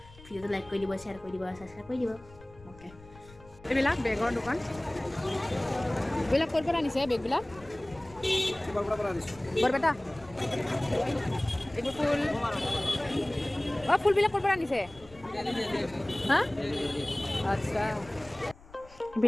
ভিডিঅ'টো লাইক কৰি দিব, শ্বেয়াৰ কৰি দিব, ছাবস্ক্ৰাইব কৰি দিব। অ'কে। এইবিলাক বেগৰ দোকান। এইবিলাক ক'ৰ পৰা আনিছে বেগবিলাক? বৰপেটা। এইবোৰ ফুল। অঁ, ফুলবিলাক ক'ৰ পৰা আনিছে? হা? আচ্ছা।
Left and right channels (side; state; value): left; noise; rumble, 22 dB below the sound